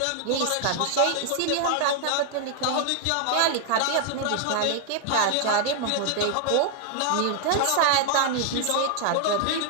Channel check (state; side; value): different; both; correlation 0.00